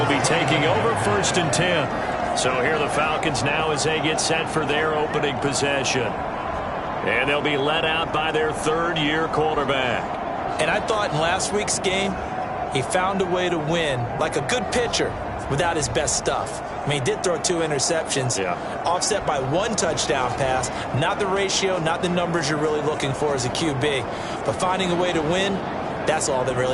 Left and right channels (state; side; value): identical; both; correlation 1.00